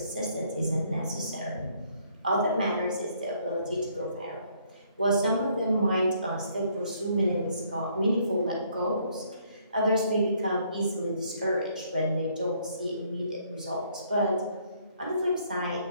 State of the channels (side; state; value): both; inverted; correlation -0.66